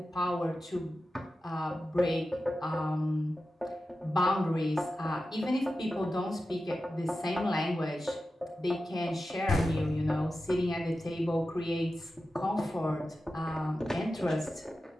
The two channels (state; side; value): normal; both; correlation 0.92